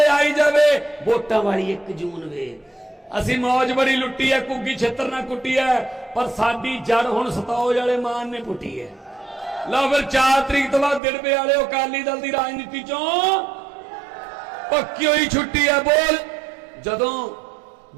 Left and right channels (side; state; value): left; drops out; at 11.0 s